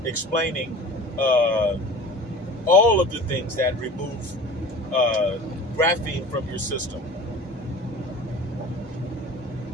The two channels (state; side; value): normal; both; correlation 0.39